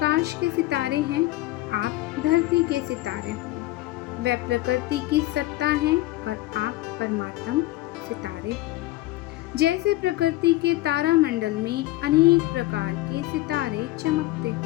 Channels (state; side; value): quieter; right; 17.6 dB